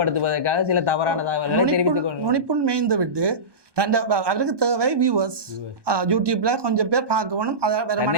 சில தவறான தகவல்களை தெரிவித்துக் கொண்டு நுனிப்புள் மேய்ந்து விட்டு அவருக்கு தேவை வியூவர்ஸ், யூடியூப்ல கொஞ்சம் பேர் பார்க்கணும்,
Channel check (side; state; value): left; late; 1.2 ms